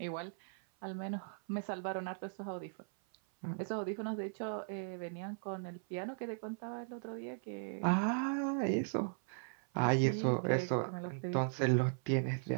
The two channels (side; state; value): left; silent; 53 dB below the other